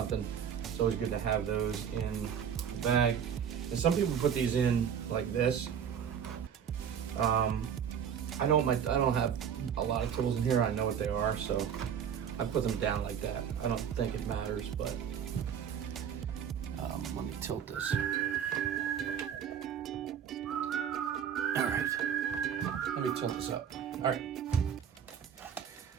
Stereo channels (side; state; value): left; quieter; 8.1 dB